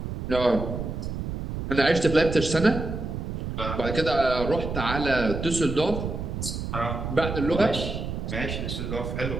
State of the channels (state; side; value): noise; right; rumble, 5 dB below the sound